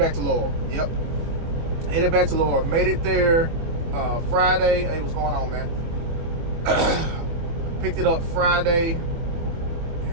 to Laurel. Yep. Headed back to Laurel. Made it there Friday. Hey, what's going on, man? Picked it up Friday,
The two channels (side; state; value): left; late; 24 ms